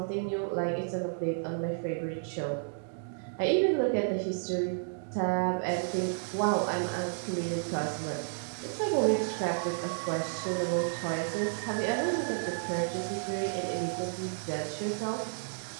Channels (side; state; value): left; silent; digital silence